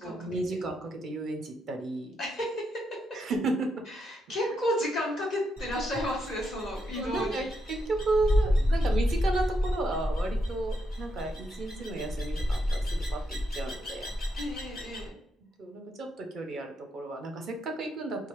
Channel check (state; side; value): normal; both; correlation 0.81